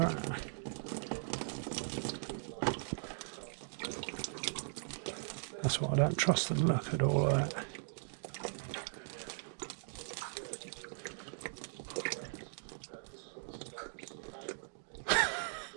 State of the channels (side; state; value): left; silent; digital silence